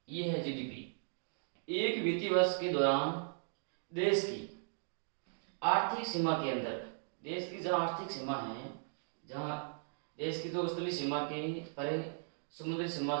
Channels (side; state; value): left; silent; digital silence